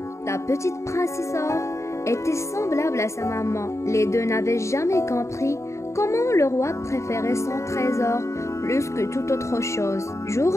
La petite princesse Or était semblable à sa maman. Les deux n'avaient jamais compris comment le roi préférait son trésor plus que toute autre chose. Jour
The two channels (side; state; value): right; late; 0.14 ms